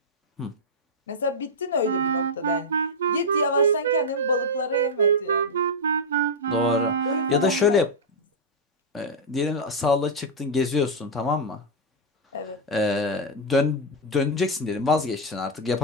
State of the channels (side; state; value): both; normal; correlation -0.03